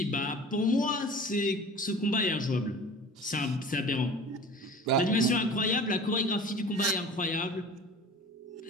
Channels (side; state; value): both; normal; correlation 0.41